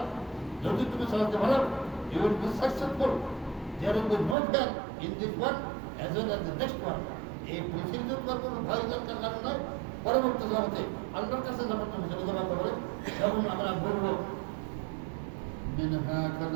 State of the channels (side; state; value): left; drops out; at 4.4 s